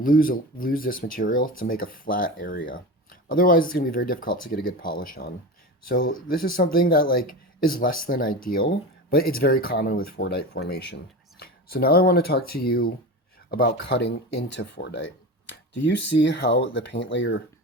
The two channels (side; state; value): both; normal; correlation 0.27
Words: this material to make a flat area. Otherwise, it's going to be very difficult to get a good polish on. So this is something that is less than ideal, but it's very common with Fordite formation. So now I want to talk to you about cutting into Fordite. Do you see how the paint layer